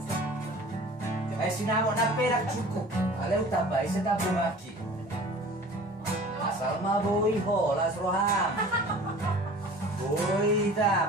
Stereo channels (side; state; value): both; normal; correlation 0.43